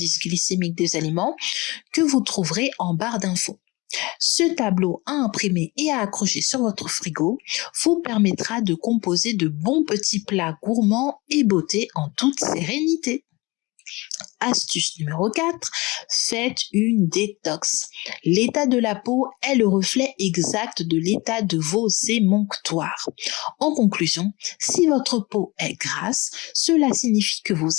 glycémiques des aliments que vous trouverez en barre d'infos. Ce tableau à imprimer et à accrocher sur votre frigo vous permettra de composer de bons petits plats gourmands et beauté en toute sérénité. Astuce numéro 4, faites une détox. L'état de la peau est le reflet exact de l'état de vos émonctoires. En conclusion, si votre peau est grasse, cela signifie que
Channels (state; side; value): quieter; right; 23.3 dB